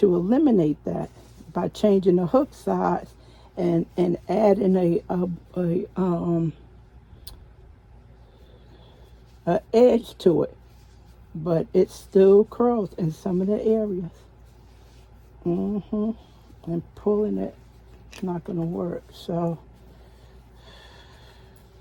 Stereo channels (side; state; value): both; identical; correlation 1.00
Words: eliminate that by changing the hook size and adding a edge to it. But it still curls in some of the areas. And pulling it, it's not going to work. So